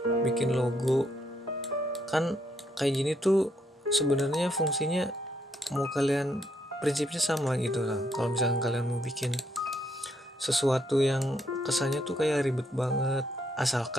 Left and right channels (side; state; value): both; normal; correlation 0.74